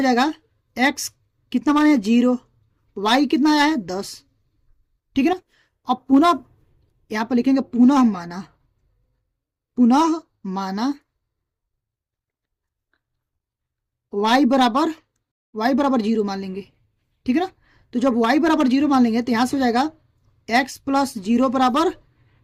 जाएगा x कितना माने 0, y कितना आया है 10, ठीक है ना। अब पुनः यहां पर लिखेंगे पुनः माना y बराबर 0 मान लेंगे, ठीक है ना। तो जब y बराबर 0 मान लेंगे तो यहां से हो जाएगा x प्लस 0 बराबर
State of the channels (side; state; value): both; identical; correlation 1.00